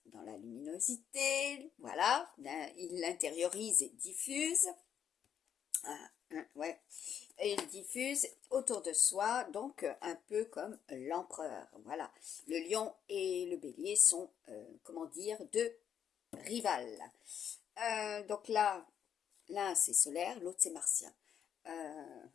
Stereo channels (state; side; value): quieter; right; 8.7 dB